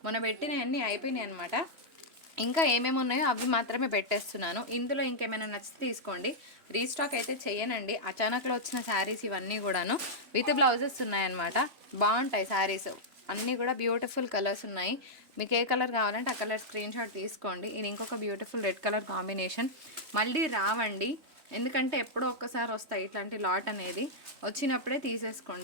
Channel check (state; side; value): late; left; 3.4 ms